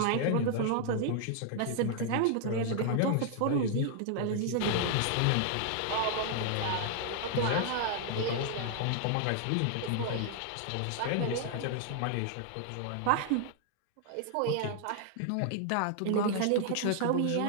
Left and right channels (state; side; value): different; both; correlation 0.00